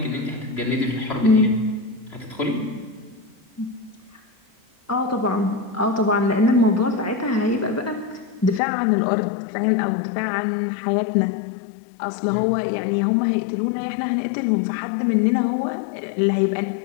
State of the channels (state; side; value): drops out; right; at 8.6 s